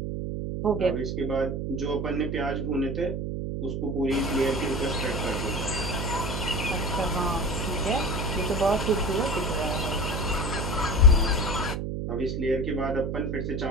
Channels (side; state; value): right; noise; hum, 2 dB below the sound